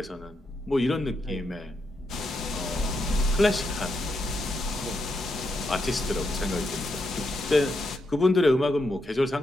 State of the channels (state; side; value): normal; both; correlation 0.82